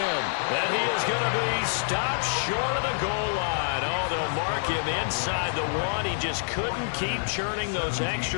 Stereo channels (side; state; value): right; silent; digital silence